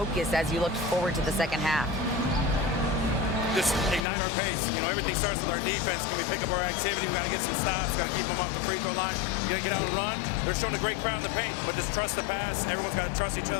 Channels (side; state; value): right; drops out; at 4.0 s